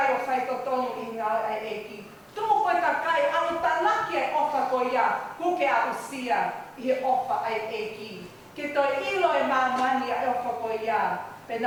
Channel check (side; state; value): both; identical; correlation 1.00